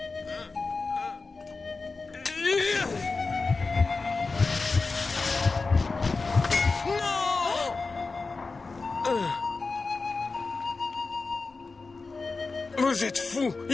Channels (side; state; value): right; quieter; 4.0 dB